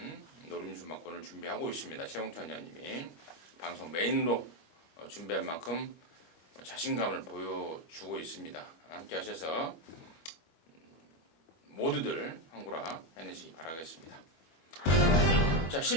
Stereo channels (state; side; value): late; right; 21 ms